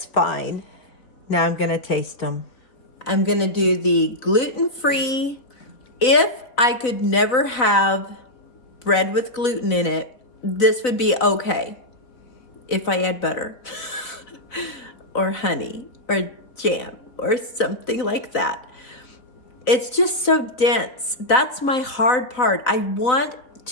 fine. Now I'm gonna taste them. I'm gonna do the gluten-free. If I could never have bread with gluten in it, this would be okay. If I had butter or honey or jam or something like that. It's just so dense. That's my hard part. I want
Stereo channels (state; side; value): late; right; 4.0 ms